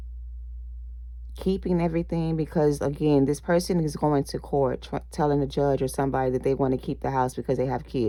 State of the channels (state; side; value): identical; both; correlation 1.00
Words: keeping everything, because again, this person is going to court telling the judge or somebody that they want to keep the house because they have